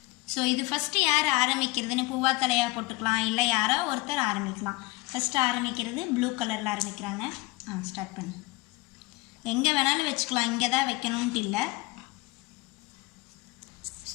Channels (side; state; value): right; quieter; 22.2 dB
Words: ஸோ இது ஃபஸ்ட்டு யார் ஆரம்பிக்கிறதுன்னு பூவா தலையாக போட்டுக்கலாம், இல்லை யாரோ ஒருத்தர் ஆரம்பிக்கலாம். ஃபஸ்ட்டு ஆரம்பிக்கிறது ப்ளூ கலரில் ஆரம்பிக்கிறாங்க. ஸ்டார்ட் பண்ணு. எங்கே வேணாலும் வச்சுக்கலாம், இங்கே தான் வைக்கணுன்ட்டு இல்லை.